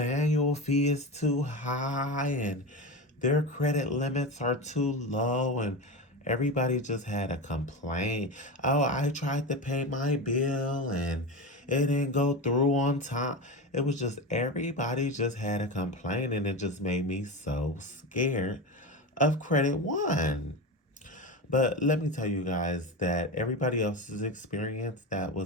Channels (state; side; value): normal; both; correlation 0.22